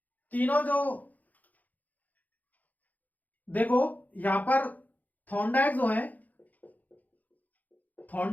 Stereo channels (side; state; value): right; late; 0.080 ms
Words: तीनों जो देखो यहां पर थॉर्नडाइक जो है,